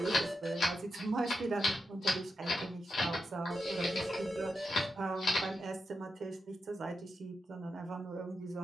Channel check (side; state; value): both; normal; correlation 0.87